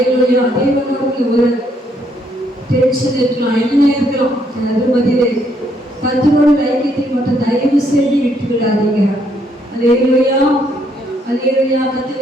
தேவனோடு ஒரு டென்ஷன் இருக்கலாம், என்ன இருக்கலாம், அது பதிலே கர்த்தரோட ஐக்கியத்தை மட்டும் தயவு செய்து விட்டு விடாதீங்க. அல்லேலூயா அல்லேலூயா.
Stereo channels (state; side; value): normal; both; correlation 0.71